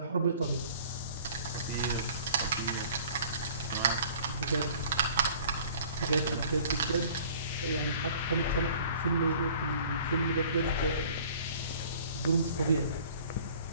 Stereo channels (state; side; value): inverted; both; correlation -0.50